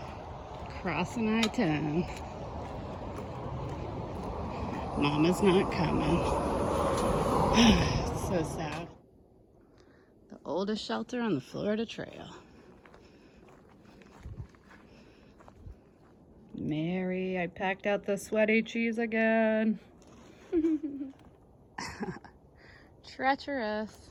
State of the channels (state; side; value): identical; both; correlation 1.00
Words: Crossing I-10. Mama's not coming. It's so sad. The oldest shelter on the Florida Trail. Mary, I packed out the sweaty cheese again. Treacherous.